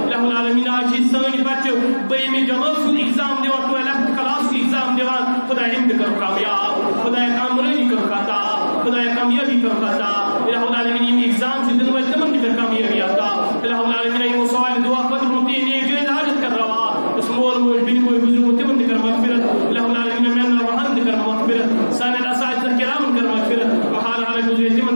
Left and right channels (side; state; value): both; inverted; correlation -1.00